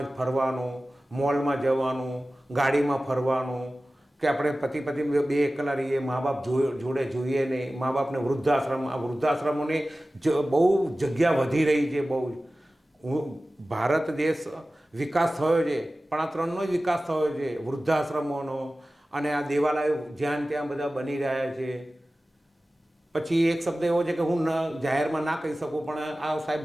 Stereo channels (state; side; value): normal; both; correlation 0.96